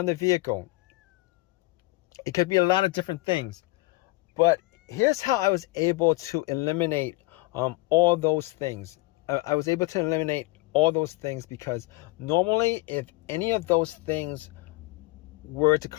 the vehicle. It could be a lot of different things. But here's how I was able to eliminate all those things. I was able to eliminate all those things because normally if any of those things were to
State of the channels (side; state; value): right; quieter; 22.0 dB